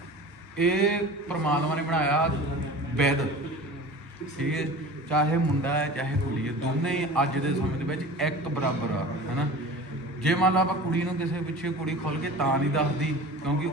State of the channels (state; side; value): normal; both; correlation 0.37